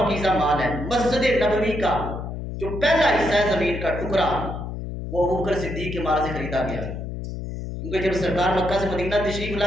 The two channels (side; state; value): left; noise; hum, 7 dB below the sound